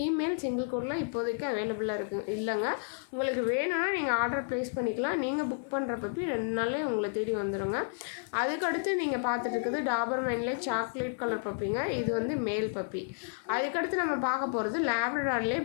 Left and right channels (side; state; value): right; silent; 55 dB below the other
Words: சிங்கிள் கோட்டில் இப்போதைக்கு அவைலபிளாக இல்லைங்க. உங்களுக்கு வேணும்னா நீங்கள் ஆர்டர் ப்ளேஸ் பண்ணிக்கலாம். நீங்கள் புக் பண்ணுற பப்பி 2 நாளே உங்களை தேடி வந்துடுங்க. அதுக்கடுத்து நீங்கள் பார்த்துட்டு இருக்குது டாபர்மேன்லே சாக்லேட் கலர் பப்பிங்க. இது வந்து மேல் பப்பி. அதுக்கடுத்து நம்ம பார்க்க போகிறது லேப்ரடார்லேயே